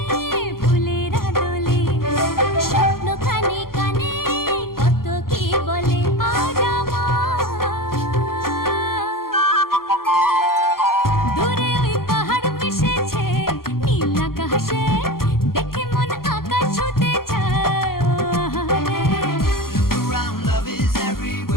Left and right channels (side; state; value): right; late; 0.92 ms